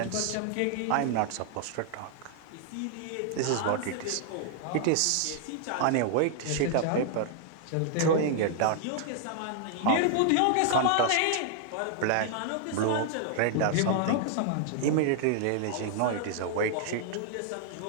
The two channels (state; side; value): different; both; correlation 0.00